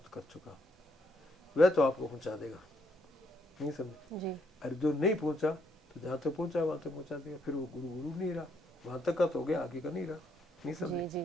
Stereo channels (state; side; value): normal; both; correlation 0.73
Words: कर चुका, वह तो आपको पहुंचा देगा, नहीं समझे? जी। अरे जो नहीं पहुंचा तो जहां तक पहुंचा वहां तक पहुंचा देगा, फिर वो गुरु गुरु नहीं रहा, वहां तक का तो हो गया, आगे का नहीं रहा, नहीं समझे?